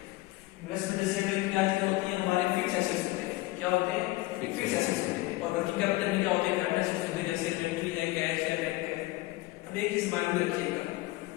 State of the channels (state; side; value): quieter; right; 20.0 dB